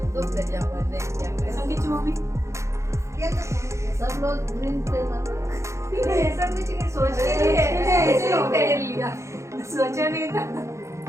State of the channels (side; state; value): left; late; 0.14 ms